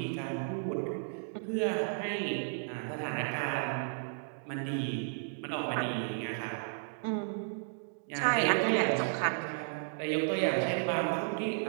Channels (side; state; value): left; silent; digital silence